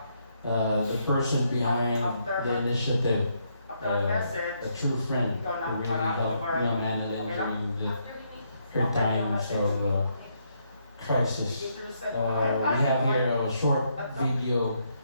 The person behind the initiative, a true friend who really helped Ma'am Annalyn during her times of crisis. We have here a short video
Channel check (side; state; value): both; inverted; correlation -0.76